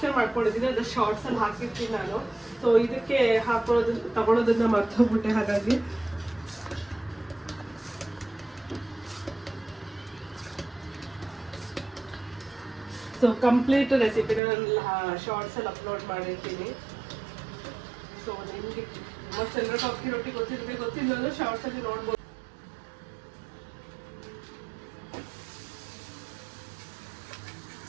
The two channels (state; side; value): drops out; left; at 14.4 s